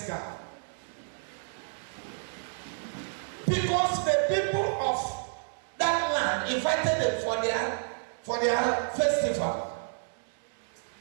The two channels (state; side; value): silent; left; 58 dB below the other